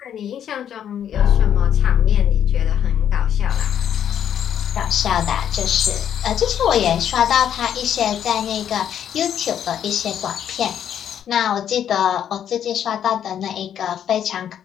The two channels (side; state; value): right; quieter; 9.5 dB